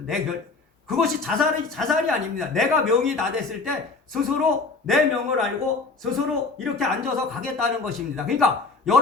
그것이 자살이 아닙니다. 내가 명이 다 됐을 때 스스로 내 명을 알고 스스로 이렇게 앉아서 가겠다는 것입니다. 그러니까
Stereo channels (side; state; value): right; quieter; 4.0 dB